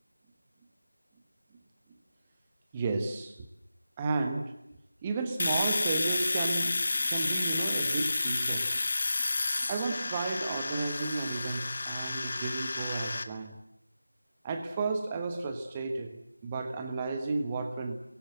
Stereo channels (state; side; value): inverted; both; correlation -0.89